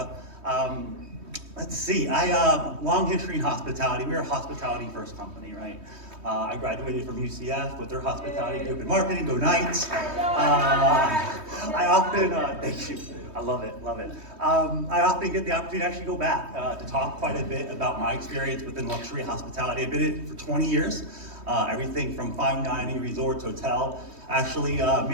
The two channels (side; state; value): left; late; 3.2 ms